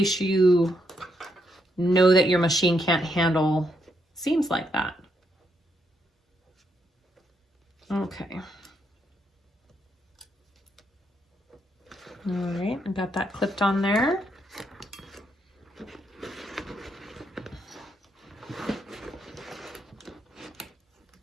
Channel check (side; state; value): both; normal; correlation 0.78